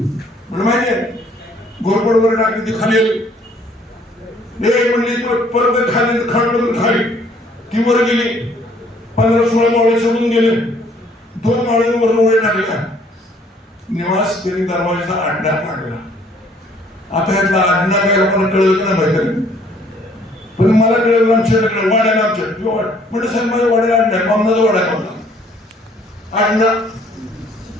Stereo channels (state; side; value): normal; both; correlation 0.61